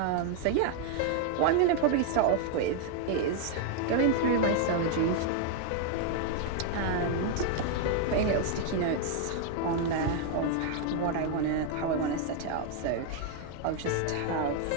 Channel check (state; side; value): different; both; correlation 0.00